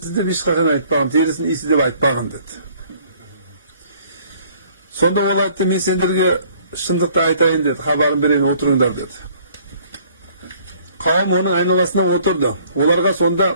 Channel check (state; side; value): inverted; both; correlation -0.58